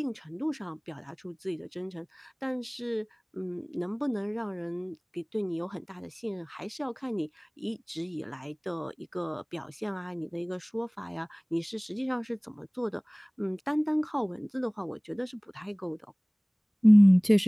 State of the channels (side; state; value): both; identical; correlation 1.00